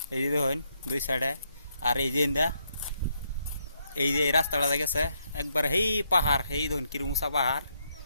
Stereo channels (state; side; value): inverted; both; correlation -0.77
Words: এই যে দেখুন দুই সাইডে, আর এই যে এই যে রাস্তাটা গেছে একবার হেই পাহাড়, এই দেখুন কিরম উঁচা পাহাড়,